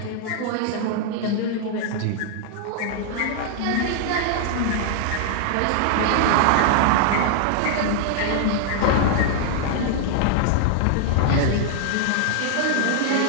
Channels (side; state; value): both; different; correlation 0.00